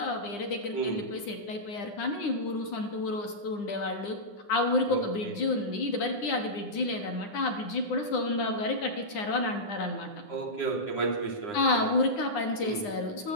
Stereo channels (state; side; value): late; right; 9.8 ms